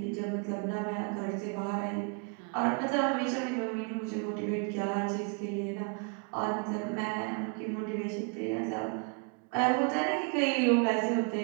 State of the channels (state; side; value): quieter; left; 36.1 dB